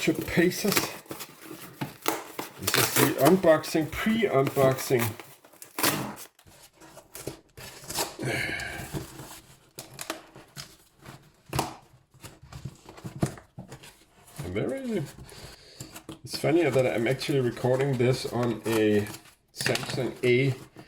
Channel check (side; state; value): both; identical; correlation 1.00